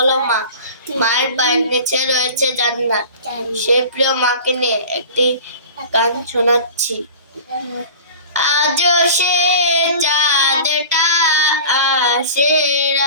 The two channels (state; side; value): inverted; both; correlation -0.39